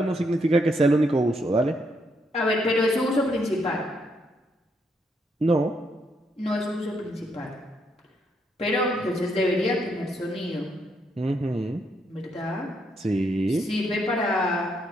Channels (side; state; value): both; normal; correlation 0.76